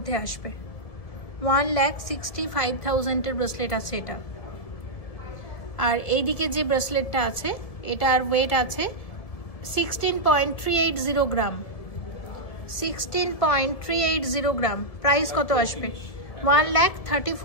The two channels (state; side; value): late; right; 1.7 ms